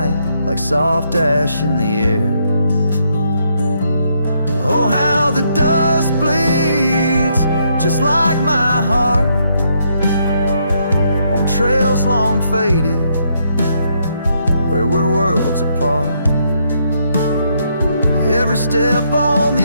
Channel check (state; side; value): inverted; both; correlation -0.74